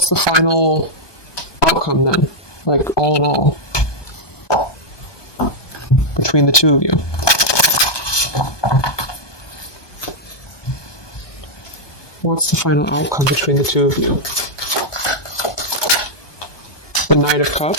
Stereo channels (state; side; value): late; right; 1.2 ms